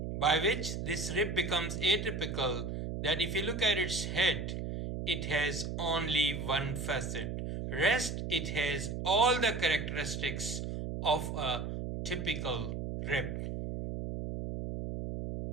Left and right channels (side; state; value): right; noise; hum, 4 dB below the sound